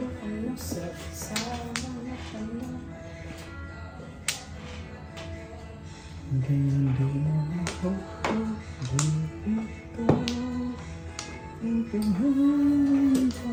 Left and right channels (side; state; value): both; identical; correlation 1.00